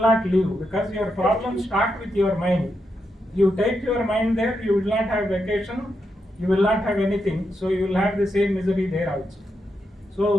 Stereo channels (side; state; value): both; normal; correlation 0.84